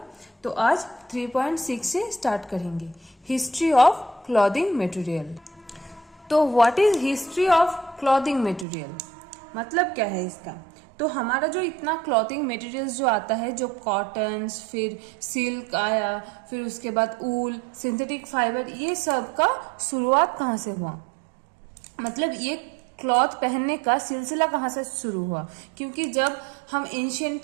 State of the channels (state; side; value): drops out; left; at 8.7 s